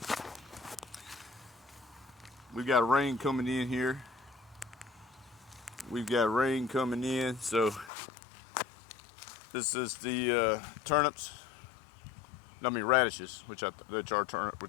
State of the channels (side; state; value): right; drops out; at 7.9 s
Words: We've got rain coming in here. We've got rain coming in. So this is the turnips. I mean radishes, which